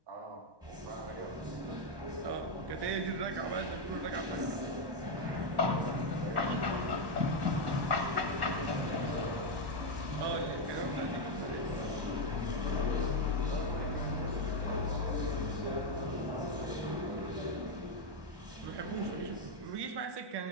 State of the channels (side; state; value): left; late; 1.1 ms